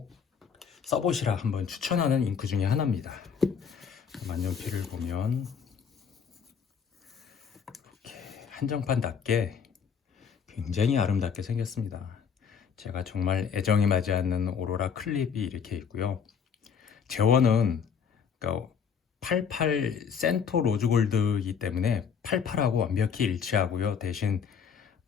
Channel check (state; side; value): quieter; right; 6.8 dB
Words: 써보시라 한번 추천하는 잉크 중에 하나입니다. 만년필을 보면 이렇게 한정판답게 굉장히 아름답게 생겼습니다. 제가 정말 애정이 맞지 않는 오로라 클립이 이렇게 있고요. 재원은 그러니까 88 센토 로즈골드이기 때문에 88하고 완벽히 일치하고요. 대신